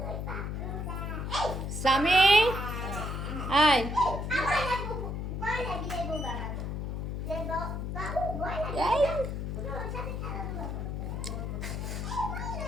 সামি, আয়। আমার লাগবো বড় লাগি দেব বাবা। যে বাবু বড় লাগি। এই ওর সাথে খেলা করব। বড়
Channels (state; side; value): noise; left; hum, 3 dB below the sound